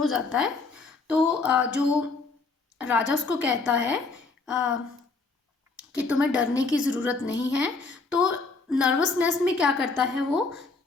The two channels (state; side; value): quieter; right; 4.0 dB